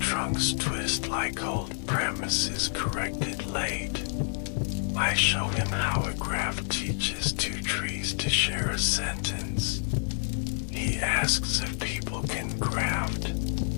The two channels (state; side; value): silent; right; 59 dB below the other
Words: twist like old premises corrected late. I show him how a graph teaches two trees to share a sentence. He asks if people can graft.